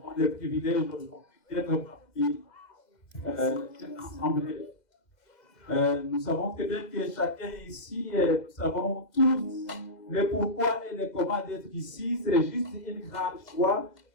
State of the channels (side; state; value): right; late; 2.0 ms